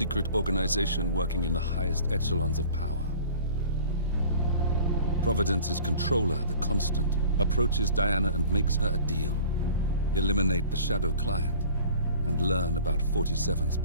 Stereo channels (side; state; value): both; inverted; correlation -0.44